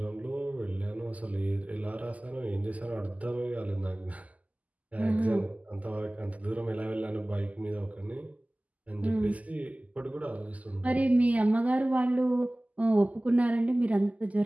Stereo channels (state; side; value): late; left; 0.074 ms